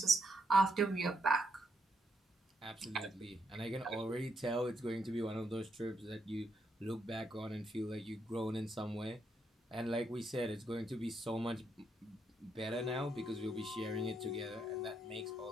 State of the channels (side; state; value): both; normal; correlation 0.77